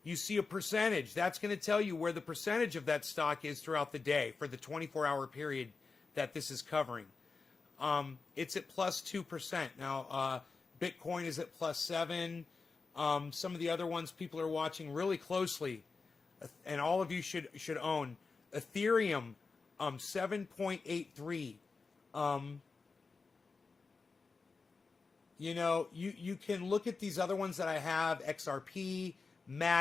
you see a percentage. That's going to tell you where the percentage of that stock is throughout the day for the 24-hour period that this is covering. It's at plus 2%. Now, Bitcoin is at plus 7. Some of the other ones people are watching really closely, and all of you should own. Ethereum, 7.83. You know, you can look at these other ones that I have, XRP,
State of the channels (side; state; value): right; quieter; 4.4 dB